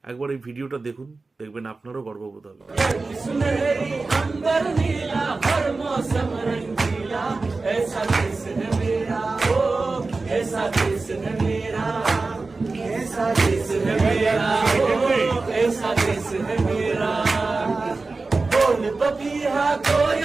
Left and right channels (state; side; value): quieter; left; 3.7 dB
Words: একবার এই ভিডিওটা দেখুন, দেখবেন আপনারও গর্ববোধ হবে। पपीहा